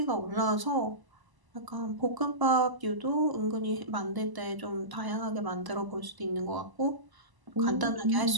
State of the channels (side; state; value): left; late; 1.0 ms